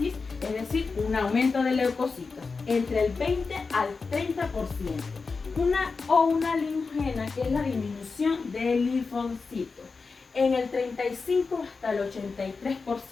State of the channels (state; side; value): quieter; right; 4.5 dB